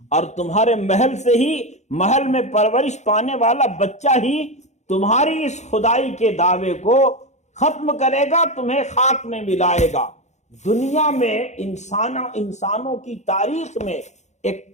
اور تمہارے محل سے ہی، محل میں پرورش پانے والا بچہ ہی تمہاری اس خدائی کے دعوے کو ختم کرے گا، تمہیں خاک میں ملائے گا۔ دنیا میں انسانوں کی تاریخ میں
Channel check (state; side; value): late; right; 0.33 ms